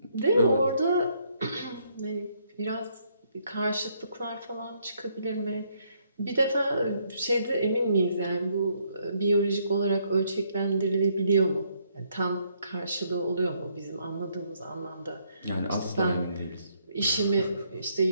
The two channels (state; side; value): inverted; both; correlation -0.71